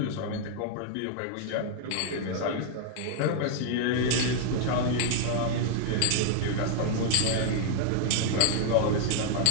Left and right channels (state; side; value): different; both; correlation 0.00